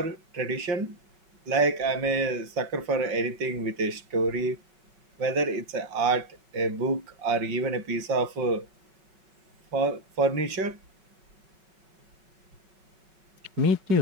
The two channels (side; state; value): left; late; 5.3 ms